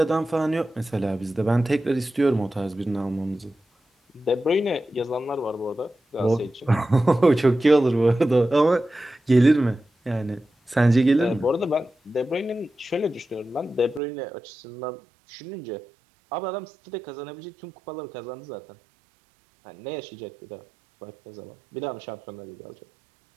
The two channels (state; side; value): drops out; left; at 14.0 s